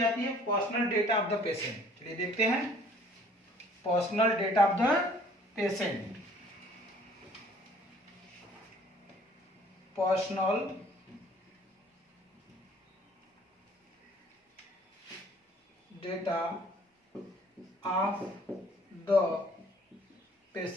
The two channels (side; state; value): both; normal; correlation 0.56